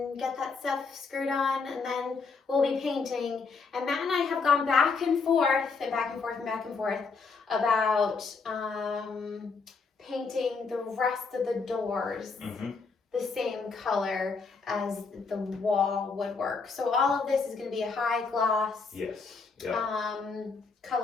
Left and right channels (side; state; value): right; quieter; 4.7 dB